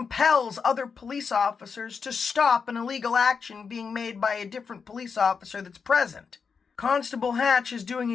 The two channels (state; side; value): quieter; right; 5.7 dB